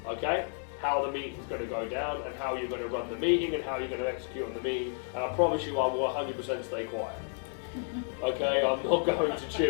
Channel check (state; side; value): silent; right; 57 dB below the other